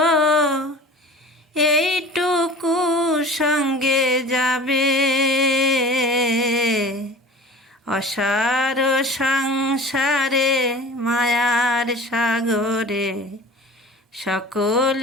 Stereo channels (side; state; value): both; normal; correlation 0.41